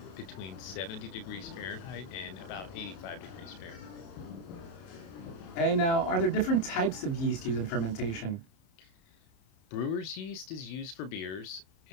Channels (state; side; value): late; right; 30 ms